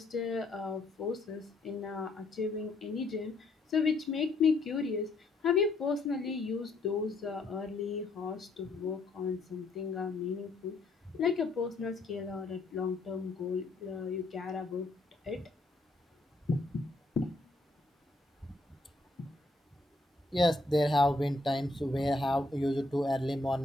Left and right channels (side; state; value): right; quieter; 3.0 dB